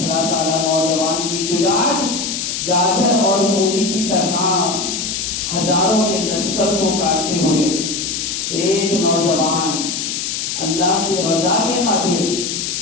سالہ نوجوان کی شجاعت گاجر اور مولی کی طرح ہزاروں کے لشکر کو کاٹتے ہوئے ایک نوجوان اللہ کی رضا کے خاطر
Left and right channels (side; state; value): left; noise; hiss, 3 dB below the sound